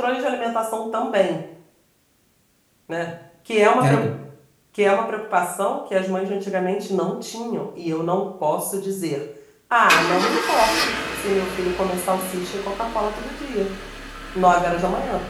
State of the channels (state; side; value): identical; both; correlation 1.00